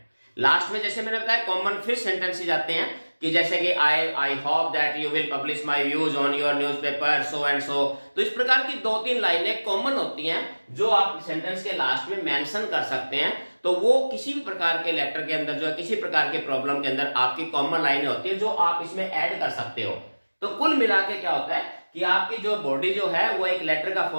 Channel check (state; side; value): inverted; both; correlation -1.00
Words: लास्ट में जैसे मैंने बताया कॉमन फिर सेंटेंसेस आते हैं कि जैसे कि I hope that you will publish my views on your newspaper so and so. तो इस प्रकार की 2-3 लाइनें कॉमन होती हैं जो आप सेंटेंस के लास्ट में मेंशन कर सकते हैं। तो वो किसी भी प्रकार के लेटर के अंदर, जो है किसी प्रकार के प्रॉब्लम के अंदर आपकी कॉमन लाइनें होती है जो आप इसमें ऐड कर सकते हो। तो कुल मिला के क्या होता है कि आपकी जो बॉडी जो है वो एक लेटर का